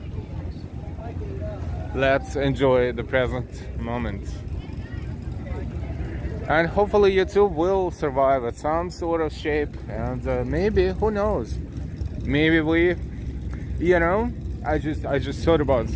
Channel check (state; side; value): identical; both; correlation 1.00